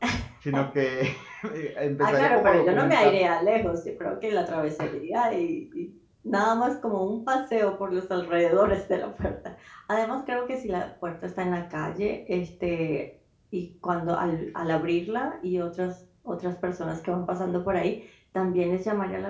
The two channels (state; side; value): identical; both; correlation 1.00